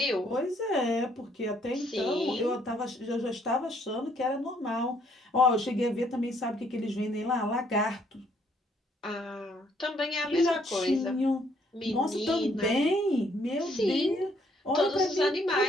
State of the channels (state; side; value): normal; both; correlation 0.67